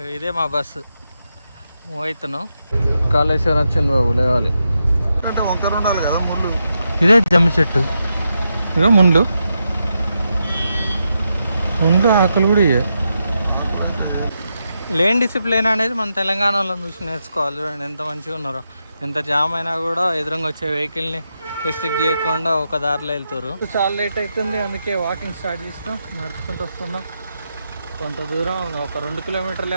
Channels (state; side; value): inverted; both; correlation -0.85